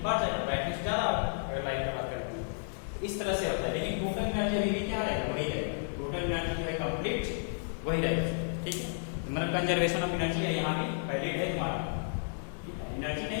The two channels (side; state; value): right; silent; 56 dB below the other